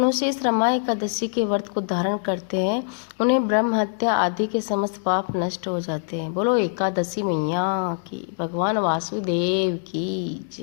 इस रमा एकादशी के व्रत को धारण करते हैं उन्हें ब्रह्म हत्या आदि के समस्त पाप नष्ट हो जाते हैं। बोलो एकादशी मैया की, भगवान वासुदेव की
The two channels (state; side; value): silent; right; digital silence